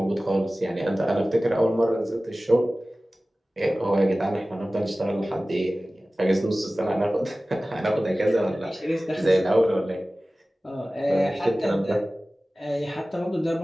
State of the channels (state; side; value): normal; both; correlation 0.97